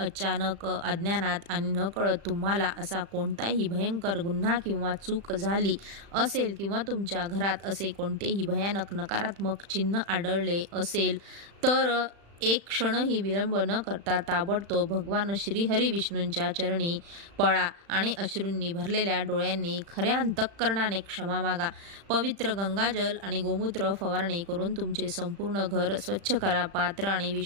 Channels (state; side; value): late; left; 35 ms